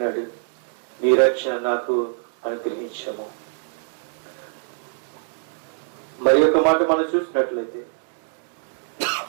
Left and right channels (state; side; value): silent; left; digital silence